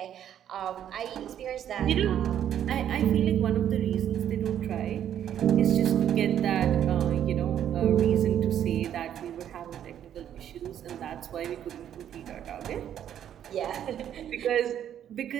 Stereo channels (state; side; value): quieter; left; 10.1 dB